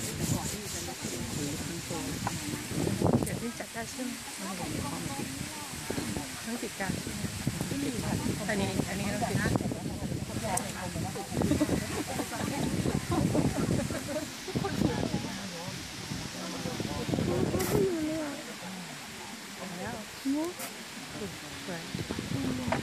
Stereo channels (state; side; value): identical; both; correlation 1.00